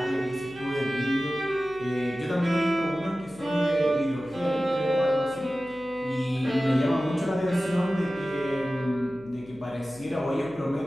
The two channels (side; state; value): left; noise; hum, 21 dB below the sound